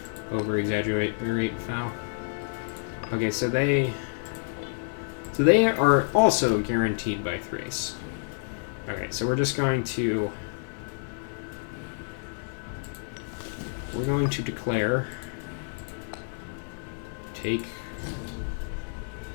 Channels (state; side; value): silent; right; 59 dB below the other